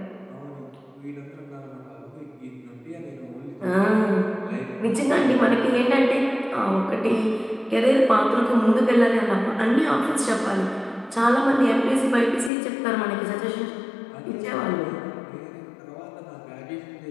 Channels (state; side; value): drops out; right; at 12.5 s